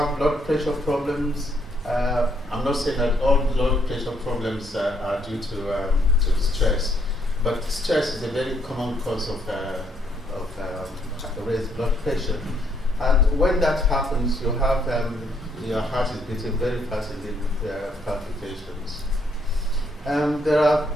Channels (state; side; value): normal; both; correlation 0.71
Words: blood pressure problems. I'm not saying that all blood pressure problems are due to stress, But stress is a very common cause of raised blood pressure. And when that happens, you have your heart is beating very fast in the palpitations. There are